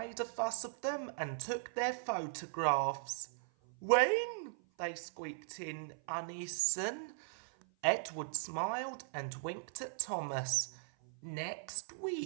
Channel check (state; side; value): silent; left; 52 dB below the other